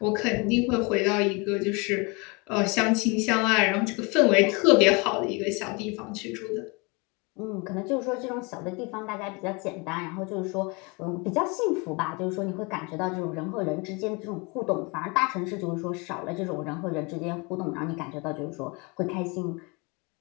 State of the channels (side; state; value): right; quieter; 29.0 dB